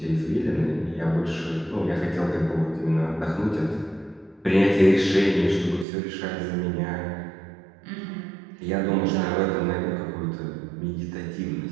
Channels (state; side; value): drops out; left; at 5.9 s